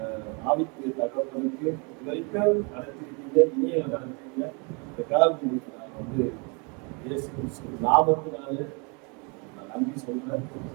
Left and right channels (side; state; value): left; quieter; 33.3 dB